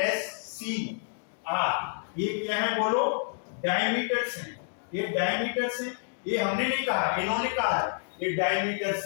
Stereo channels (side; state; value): right; silent; digital silence